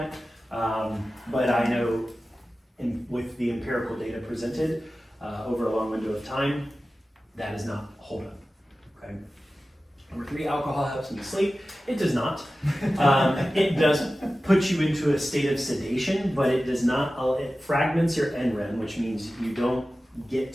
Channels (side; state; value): both; normal; correlation 0.95